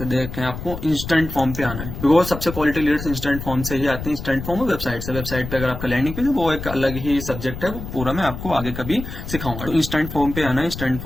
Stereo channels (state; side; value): noise; left; rumble, 8 dB below the sound